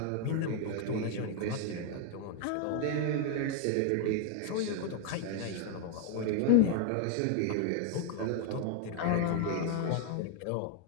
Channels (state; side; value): different; both; correlation 0.00